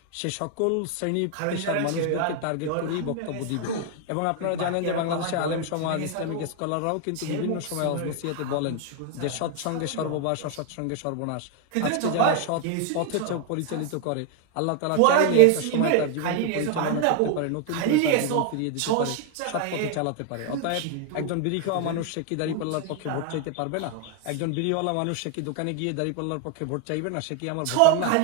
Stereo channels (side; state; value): both; different; correlation 0.01